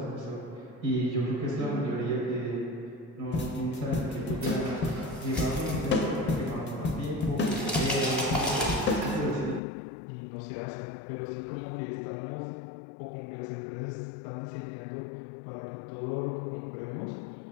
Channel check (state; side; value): drops out; right; at 9.6 s